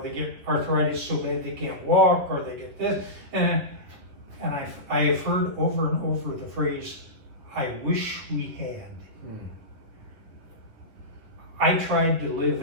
get arthritis so bad they can't walk, or they get this, and I have heard over and over the phrase, "I wish we had." I tried to live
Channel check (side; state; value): left; late; 9.9 ms